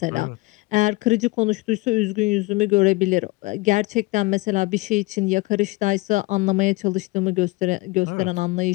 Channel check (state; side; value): quieter; right; 22.7 dB